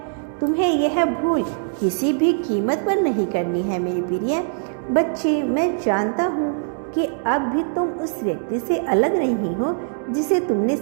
तुम्हें यह भूल किसी भी कीमत पर नहीं करनी है। मेरे प्रिय बच्चे, मैं जानता हूँ कि अब भी तुम उस व्यक्ति से अलग नहीं हो जिसे तुमने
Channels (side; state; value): left; silent; digital silence